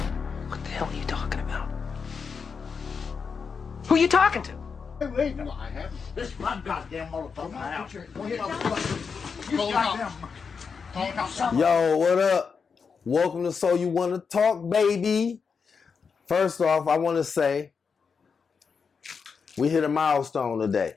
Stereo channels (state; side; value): quieter; right; 5.7 dB